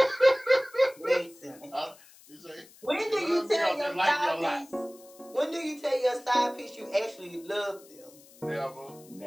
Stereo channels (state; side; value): noise; left; hiss, 24 dB below the sound